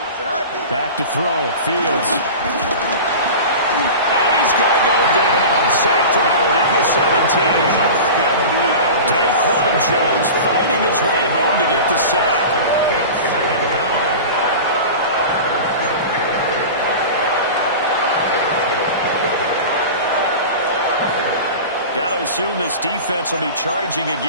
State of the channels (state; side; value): inverted; both; correlation -0.32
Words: Back to throw. Fields. And he's going to go down. Sacked right around the 17. Daquan Jones fighting his way home to get the sack. Got to assume this defense will be charging